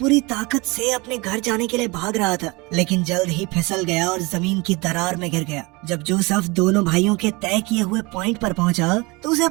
ताकत से अपने घर जाने के लिए भाग रहा था, लेकिन जल्द ही फिसल गया और जमीन की दरार में गिर गया। जब जोसेफ दोनों भाइयों के तय किए हुए पॉइंट पर पहुंचा तो उसे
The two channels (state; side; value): quieter; left; 25.6 dB